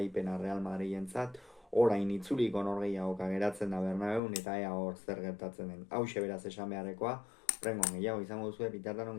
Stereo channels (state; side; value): drops out; right; at 4.2 s